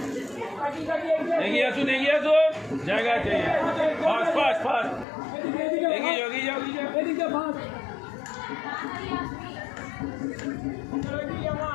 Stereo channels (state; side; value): drops out; right; at 5.1 s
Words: এগিয়ে আসুন জায়গা আছে ফাস্ট ফাস্ট ফাস্ট এগিয়ে যাও